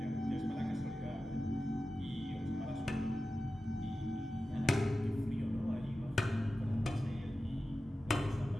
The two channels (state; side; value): normal; both; correlation 0.94